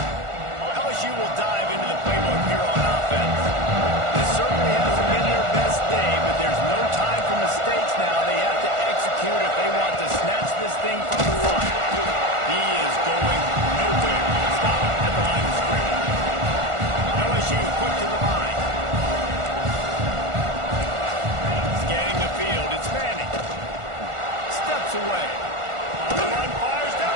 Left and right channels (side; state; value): left; late; 1.4 ms